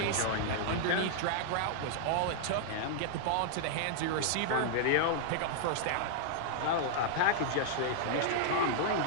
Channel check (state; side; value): different; both; correlation -0.01